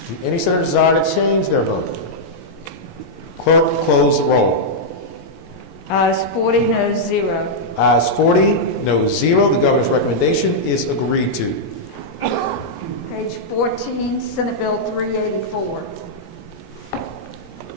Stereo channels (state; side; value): late; right; 17 ms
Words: any senator desire to change their vote? Clerk, close the roll. Ayes 40, no 0. Ayes 40, no 0. The governor's recommendation is agreed to. Page 14, Senate Bill 384.